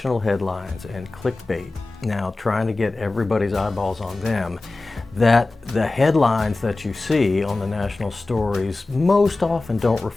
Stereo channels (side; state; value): right; quieter; 3.2 dB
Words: headlines and clickbait, now trying to get everybody's eyeballs on them, that the headlines that you see on the national stories most often don't